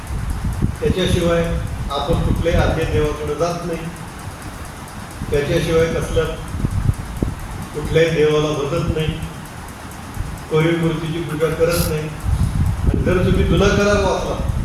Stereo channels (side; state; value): both; identical; correlation 1.00